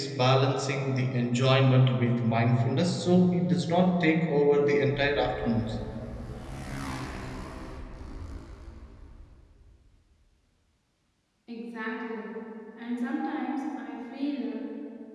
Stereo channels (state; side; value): identical; both; correlation 1.00